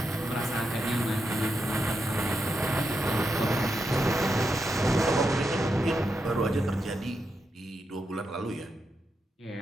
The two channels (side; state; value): both; normal; correlation 0.85